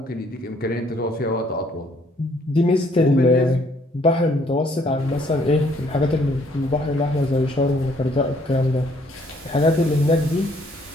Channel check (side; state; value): both; normal; correlation 0.65